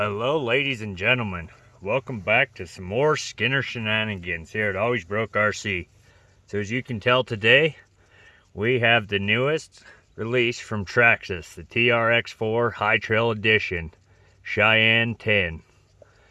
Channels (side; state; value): both; identical; correlation 1.00